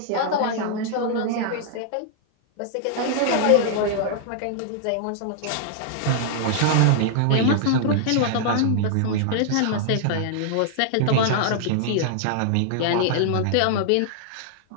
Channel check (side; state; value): both; different; correlation -0.01